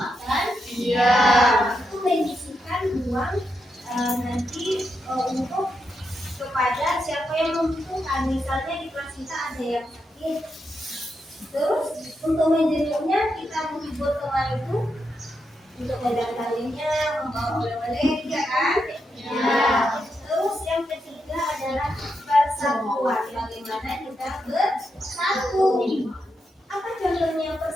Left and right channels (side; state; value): both; normal; correlation 0.84